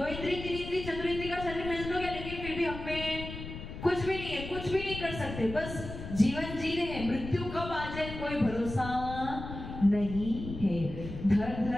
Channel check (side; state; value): left; noise; rumble, 9 dB below the sound